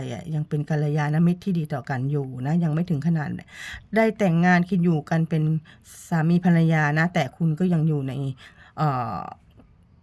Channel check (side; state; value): both; identical; correlation 1.00